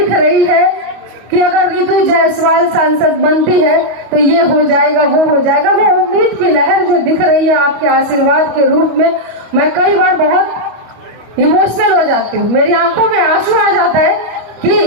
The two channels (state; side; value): late; left; 25 ms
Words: रही है कि अगर रितु जायसवाल सांसद बनती है तो ये हो जाएगा, वो हो जाएगा। वो उम्मीद की लहर जो दिख रही है आपके आशीर्वाद के रूप में, मैं कई बार बहुत इमोशनल हो जाती हूँ। मेरी आंखों में आंसू आ जाता है